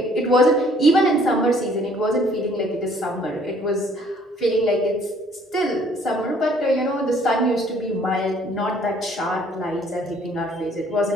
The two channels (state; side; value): normal; both; correlation 0.60